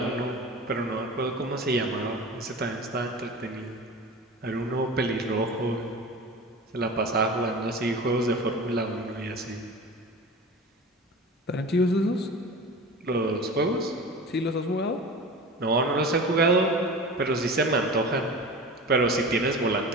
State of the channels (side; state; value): both; normal; correlation 0.33